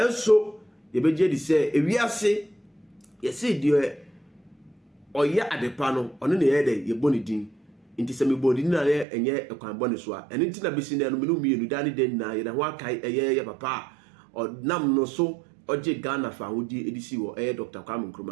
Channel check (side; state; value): left; drops out; at 9.1 s